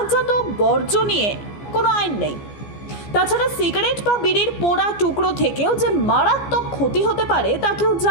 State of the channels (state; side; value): late; right; 14 ms